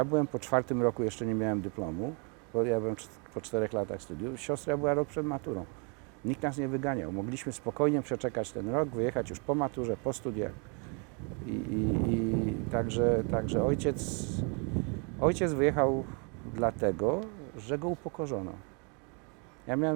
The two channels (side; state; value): left; quieter; 35.0 dB